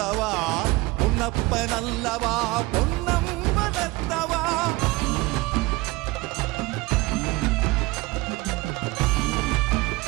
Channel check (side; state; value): left; quieter; 21.8 dB